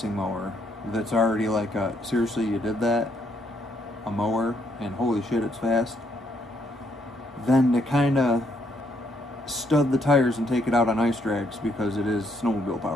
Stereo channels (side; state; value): both; normal; correlation 0.73